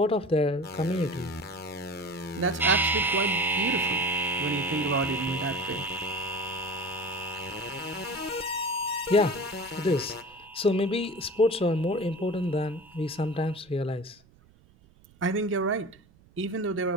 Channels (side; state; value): right; noise; rumble, 28 dB below the sound